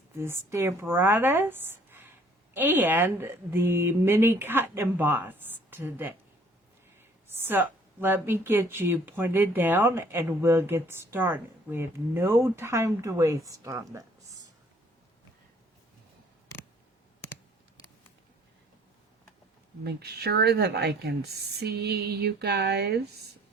the Stamparatus and the mini cut and emboss today. So let me get you pointed down and we'll get started. We have no time to waste on this. Make sure that I can see you guys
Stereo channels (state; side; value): normal; both; correlation 0.58